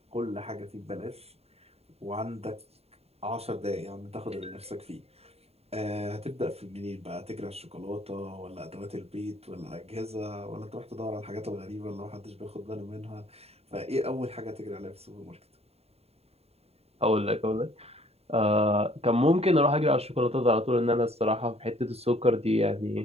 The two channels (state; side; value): late; left; 0.30 ms